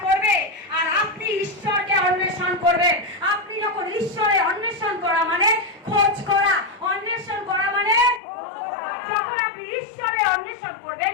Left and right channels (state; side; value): drops out; right; at 8.2 s